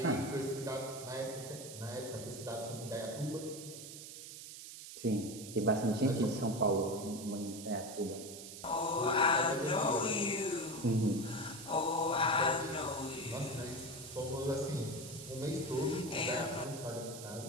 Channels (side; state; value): right; noise; hiss, 12 dB below the sound